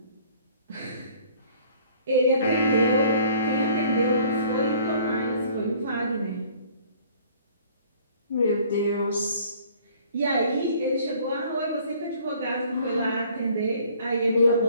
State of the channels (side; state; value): both; inverted; correlation -0.55